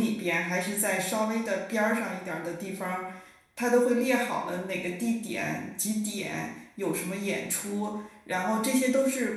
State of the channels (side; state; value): both; identical; correlation 1.00